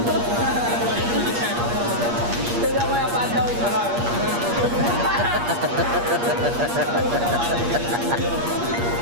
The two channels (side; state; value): left; late; 8.5 ms